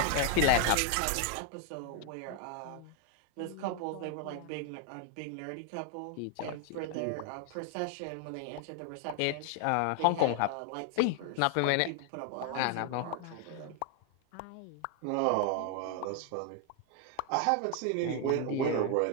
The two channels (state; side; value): different; both; correlation 0.00